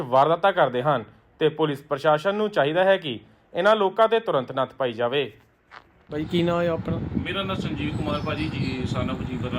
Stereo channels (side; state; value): both; identical; correlation 1.00